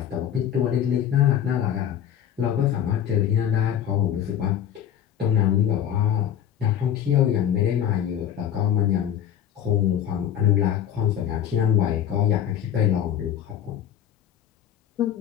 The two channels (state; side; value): quieter; right; 9.9 dB